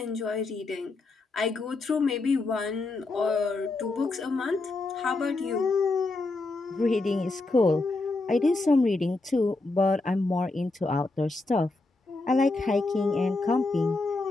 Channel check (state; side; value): quieter; right; 3.3 dB